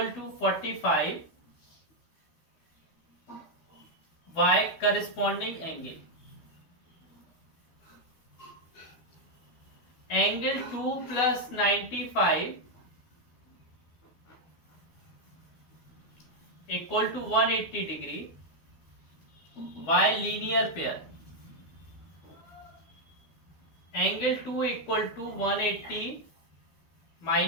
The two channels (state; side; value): late; right; 12 ms